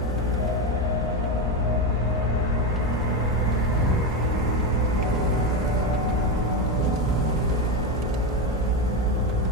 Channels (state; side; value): normal; both; correlation 0.13